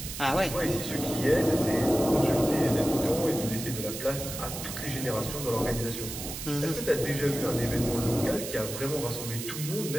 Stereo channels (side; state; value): right; noise; hiss, 8 dB below the sound